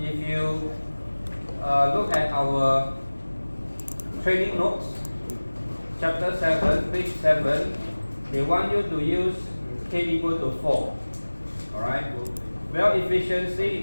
you look at our training notes, chapter 7, page 7, they want you to use K equal to 4. Alright, well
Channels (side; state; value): both; inverted; correlation -1.00